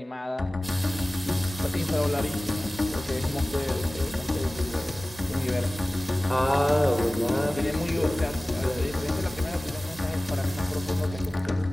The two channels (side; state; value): both; normal; correlation 0.98